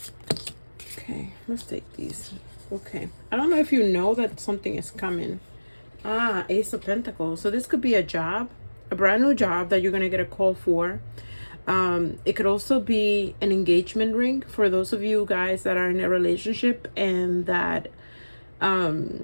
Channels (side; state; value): both; inverted; correlation -1.00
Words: Okay, let's take these. Okay, I don't know if you know that something is coming. Ah, Ace of Pentacles. So this could be a job, a brand new job that you're gonna get a call for. It could also be an engagement ring for those of you guys that are in a relationship and that,